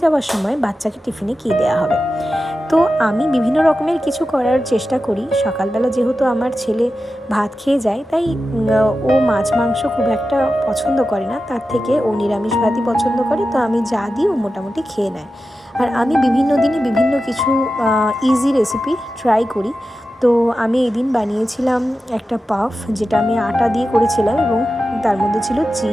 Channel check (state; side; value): normal; both; correlation 0.92